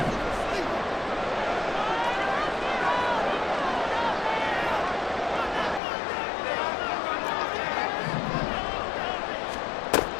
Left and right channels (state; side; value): drops out; right; at 5.8 s